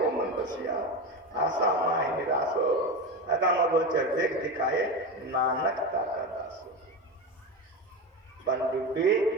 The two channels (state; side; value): normal; both; correlation 0.20